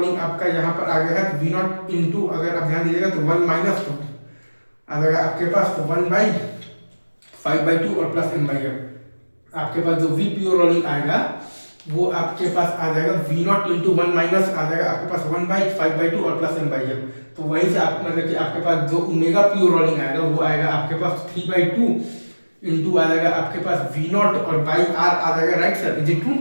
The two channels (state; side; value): inverted; both; correlation -1.00